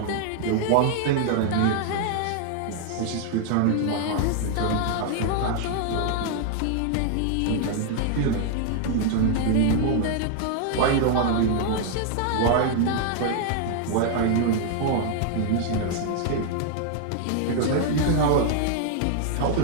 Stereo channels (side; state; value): both; different; correlation 0.00